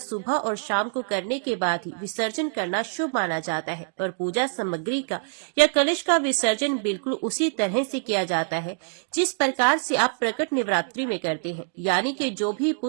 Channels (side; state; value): left; silent; digital silence